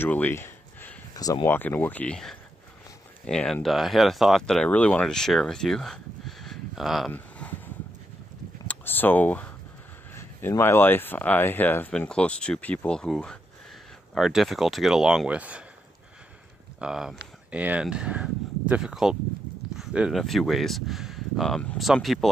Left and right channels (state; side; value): normal; both; correlation 0.81